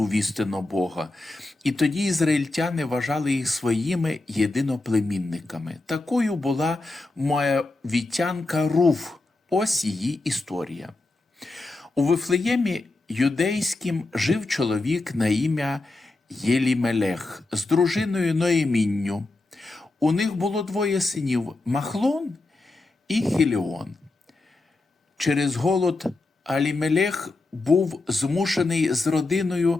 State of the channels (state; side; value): quieter; right; 3.1 dB